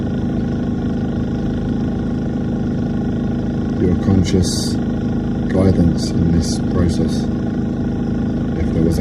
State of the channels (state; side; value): identical; both; correlation 1.00